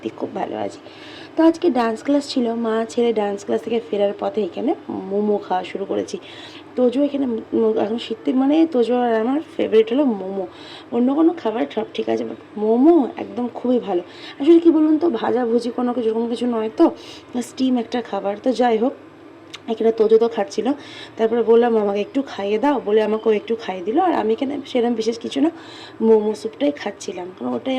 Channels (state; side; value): identical; both; correlation 1.00